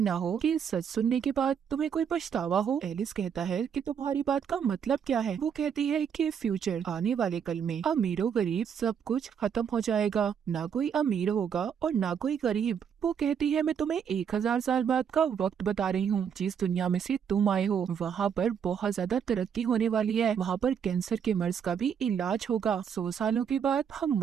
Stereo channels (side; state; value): left; quieter; 7.6 dB